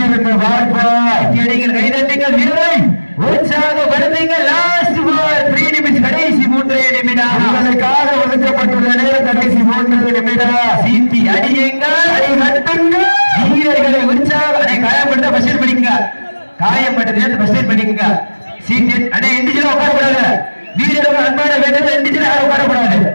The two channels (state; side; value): inverted; both; correlation -1.00